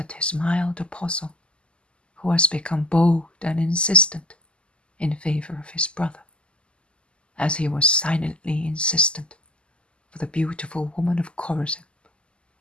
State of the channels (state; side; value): late; right; 0.052 ms